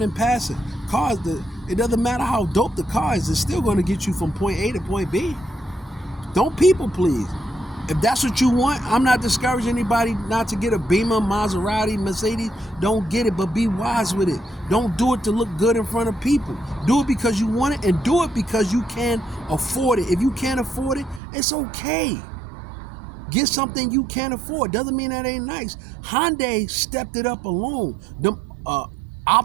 in passing. It doesn't matter how dope the car is, it's still going to get you from point A to point B. Don't people please. If that's what you want, I'm not discouraging anybody not to get a Beamer, Maserati, Mercedes. Don't get it, but be wise with it. Don't do it to look good in front of people. Do it because you want it, and do it because you can afford it. If you can't afford it, it's okay. Get something you can't afford. Doesn't mean that ain't nice. Hyundai stepped it up alone. The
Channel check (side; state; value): left; drops out; at 21.2 s